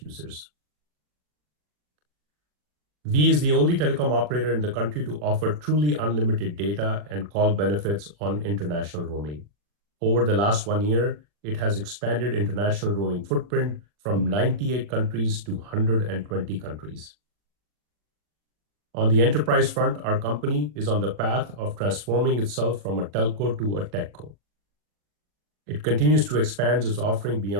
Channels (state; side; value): late; left; 40 ms